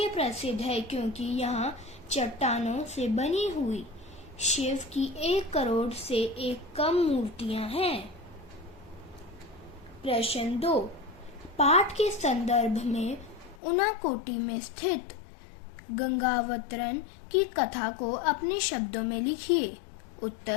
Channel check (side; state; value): right; drops out; at 13.6 s